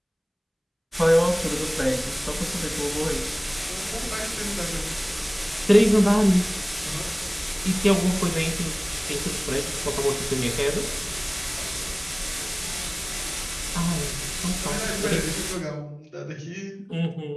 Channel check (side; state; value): both; identical; correlation 1.00